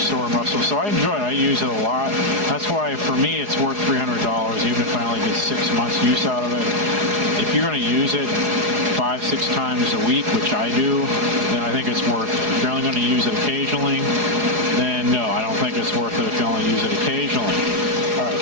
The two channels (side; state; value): left; late; 4.8 ms